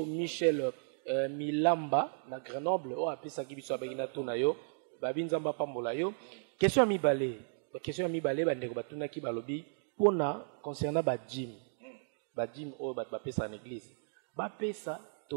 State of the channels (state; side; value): silent; left; digital silence